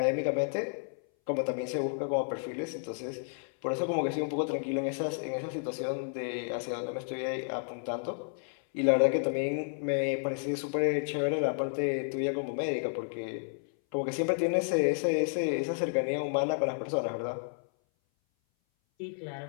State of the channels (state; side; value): silent; right; 57 dB below the other